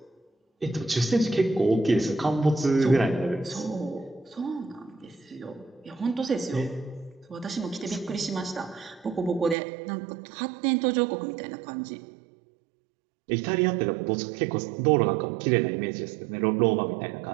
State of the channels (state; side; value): drops out; left; at 9.6 s